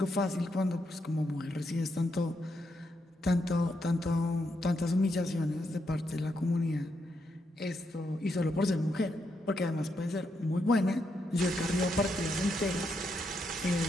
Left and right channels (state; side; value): normal; both; correlation 0.81